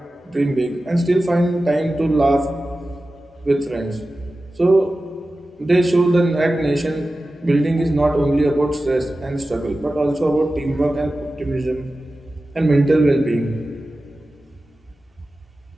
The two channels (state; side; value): normal; both; correlation 0.94